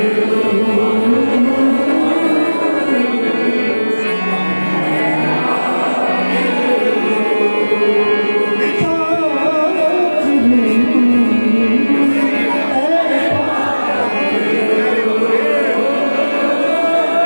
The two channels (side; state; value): both; inverted; correlation -1.00